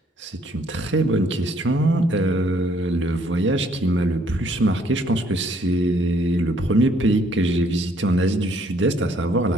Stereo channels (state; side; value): normal; both; correlation 0.65